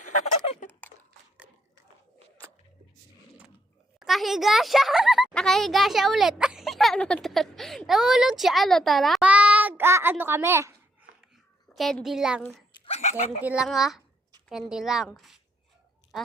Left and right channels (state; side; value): normal; both; correlation 0.76